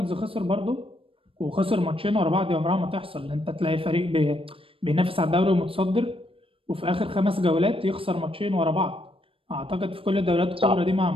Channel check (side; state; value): left; late; 0.26 ms